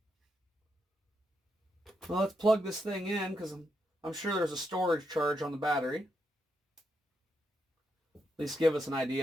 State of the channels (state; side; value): normal; both; correlation 0.82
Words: Well, let's plug this thing in, because I'm sure there's a storage charge on the battery. At least give us an